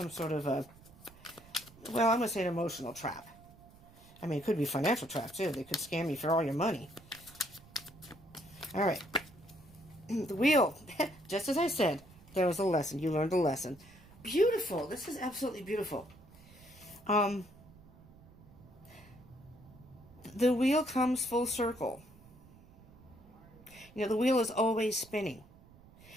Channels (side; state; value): right; noise; rumble, 23 dB below the sound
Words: sort of a, well, I'm going to say an emotional trap. I mean, it could be a financial trap, too. They could scam you for all your money. All right. The wheel. Just as I said, there was a lesson. You learned a lesson. Beautiful. This is absolutely beautiful. The wheel comes full circle. You know, the wheel is always spinning.